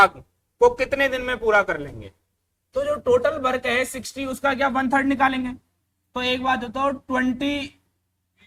को कितने दिन में पूरा कर लेंगे। तो जो टोटल वर्क है 60, उसका क्या 1/3 निकालेंगे। तो एक बात बताओ, 20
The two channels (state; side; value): identical; both; correlation 1.00